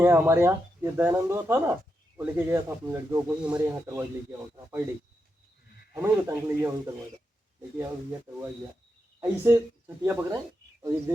हमारे यहाँ। ये दयानंद था ना, वो लेके गया था अपनी लड़कियों को ही हमारे यहाँ करवा लेके आओ था पर डे, हमें ही बताने के लिए वहीं करवाया लेके आओ भैया करवा गया। ऐसे छटिया पकड़ाए और एक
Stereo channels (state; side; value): normal; both; correlation 0.86